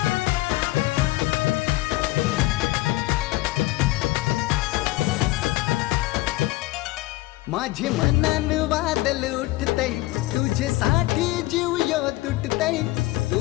माझे मनान वादल उठतय तुझ्यासाठी जीव यो तुटतय।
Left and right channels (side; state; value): right; quieter; 18.9 dB